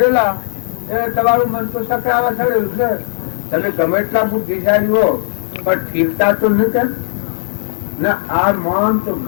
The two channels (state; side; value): silent; right; digital silence